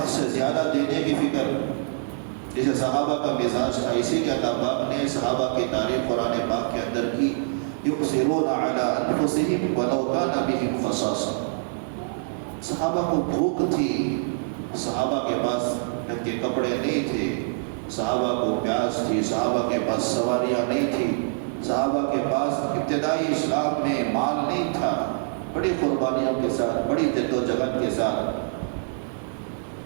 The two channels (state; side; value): silent; left; digital silence